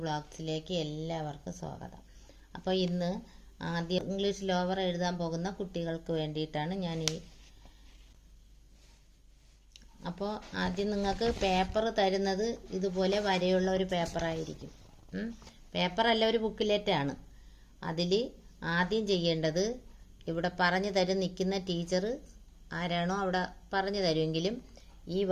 ബ്ലോഗ്സിലേക്ക് എല്ലാവർക്കും സ്വാഗതം. അപ്പോൾ ഇന്ന് ആദ്യം ഇംഗ്ലീഷ് ലോവർ എഴുതാൻ പോകുന്ന കുട്ടികൾക്ക് വേണ്ടിയിട്ടാണ് അപ്പോൾ ആദ്യം നിങ്ങൾക്ക് പേപ്പർ തരുന്നത് ഇതുപോലെ വരെയുള്ള ഒരു പേപ്പറായിരിക്കും. പേപ്പറല്ല, ഒരു ബുക്കിലെറ്റാണ്. അതിൽ ആദ്യം ചെയ്യേണ്ടത്, ഇവിടെ പറഞ്ഞു തരും നിൽക്കുന്ന ടീച്ചർ ആരാണോ അവിടെ പറഞ്ഞു തരുമെങ്കിലും ഈ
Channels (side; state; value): both; identical; correlation 1.00